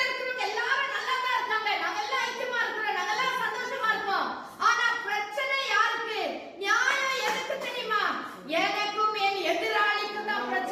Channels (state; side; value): identical; both; correlation 1.00